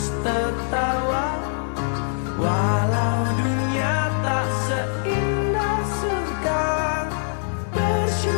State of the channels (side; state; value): right; silent; digital silence